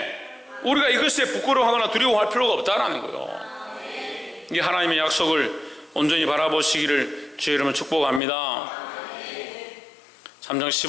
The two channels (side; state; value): right; drops out; at 8.2 s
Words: 우리가 이것에 부끄러워하거나 두려워할 필요가 없다는 거예요. 이 하나님의 약속을 온전히 바라보시기를 주의 이름으로 축복합니다. 3장